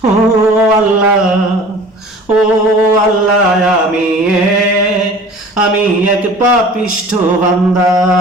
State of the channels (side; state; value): both; normal; correlation 0.44